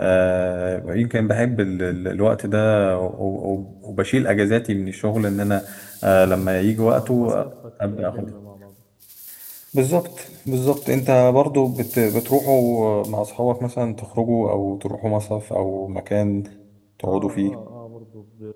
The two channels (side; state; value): both; identical; correlation 1.00